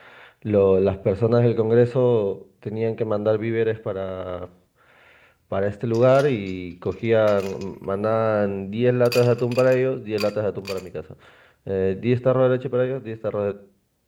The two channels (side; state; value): both; identical; correlation 1.00